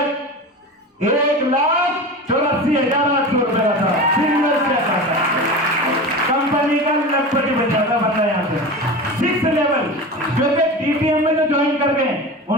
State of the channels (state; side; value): normal; both; correlation 0.29